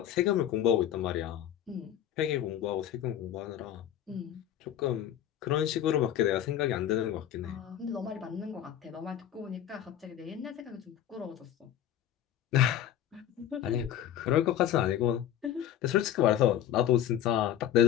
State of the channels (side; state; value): right; quieter; 10.9 dB